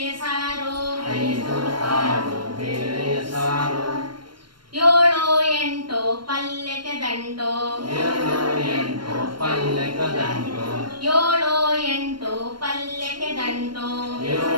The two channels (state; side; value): late; left; 0.72 ms